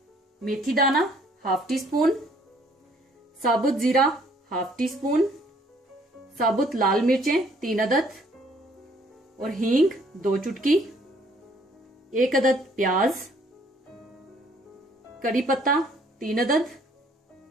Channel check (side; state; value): both; normal; correlation 0.62